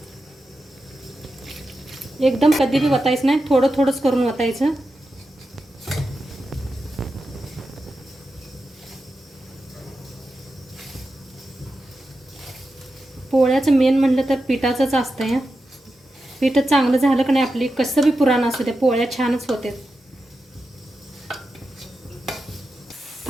एकदम कधी बी वतायचं नाही, थोडं थोडंच करून वतायचं. पोळ्याचं मेन म्हणलं तर पिठाचंच असतं या. पीठ चांगलं झालं की नाही आपली कसं बी पुराण असू दे पोळ्या छानच होते.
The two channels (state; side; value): normal; both; correlation 0.90